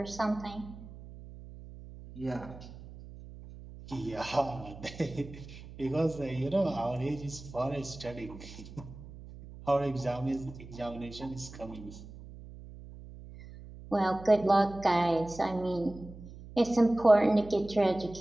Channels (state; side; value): noise; right; hum, 16 dB below the sound